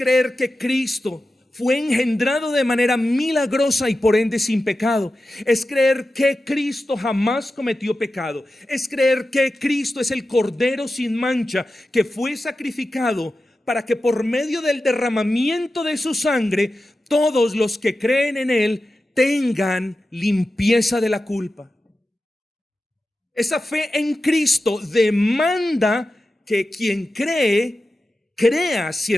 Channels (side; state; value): both; normal; correlation 0.92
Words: que Cristo fue engendrado de manera milagrosa y por ende sin pecado. Es creer que Cristo jamás cometió pecado. Es creer que Cristo es el Cordero sin mancha que fue sacrificado para que por medio del derramamiento de su sangre todos los que creen en Él tengan limpieza de la culpa. Esa fe en Cristo demanda que quien crea